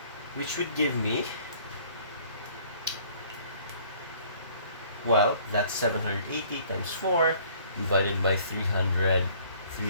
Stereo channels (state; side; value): inverted; both; correlation -0.57